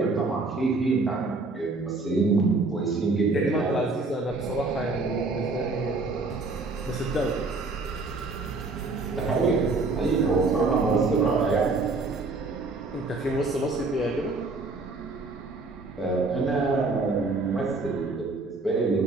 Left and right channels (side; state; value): left; quieter; 3.5 dB